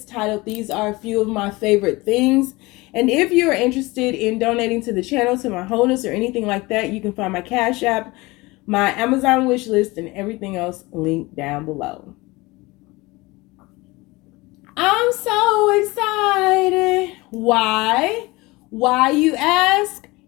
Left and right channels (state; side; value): quieter; right; 22.4 dB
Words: titled "These Are a Few of My Favorite Things." And if you're interested in donating to the channel, to my wholeness, or anything like that, you can find my Cash App, my Amazon wish list, and everything else linked down below. I'm so excited. Why? Why, you ask?